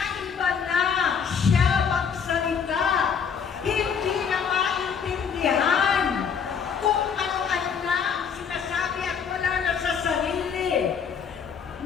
na siya magsalita, hindi na maintindihan kung ano-ano na sinasabi at wala na sa sarili.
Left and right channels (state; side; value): quieter; right; 6.8 dB